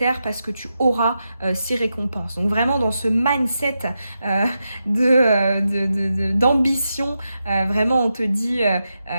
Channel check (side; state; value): both; inverted; correlation -0.88